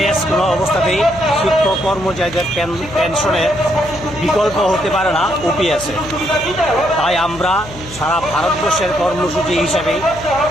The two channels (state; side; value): noise; left; hum, 16 dB below the sound